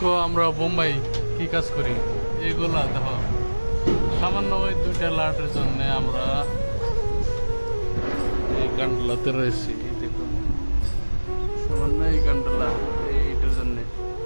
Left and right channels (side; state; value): both; inverted; correlation -1.00